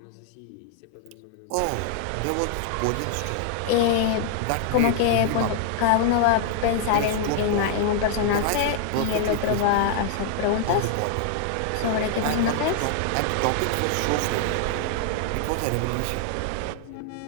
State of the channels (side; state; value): both; different; correlation -0.01